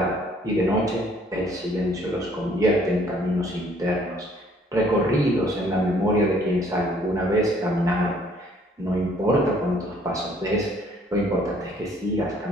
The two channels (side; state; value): both; normal; correlation 0.61